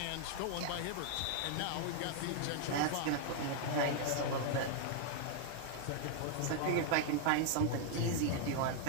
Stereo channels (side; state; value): both; different; correlation 0.00